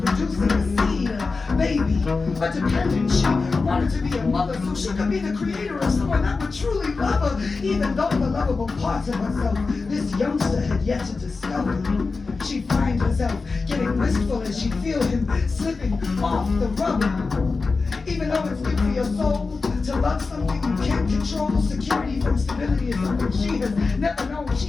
a seed, a baby, a dependent. She wanted to be a mother so she could be the creator of someone that would truly love her, even though the lovable parts of herself this youngster had yet to discover. She'd find herself getting wistful as she'd feel him slipping off the rubber. Even though it's good for your soul to love something you can't control, security from stability is something she has never known.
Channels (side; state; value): right; quieter; 4.2 dB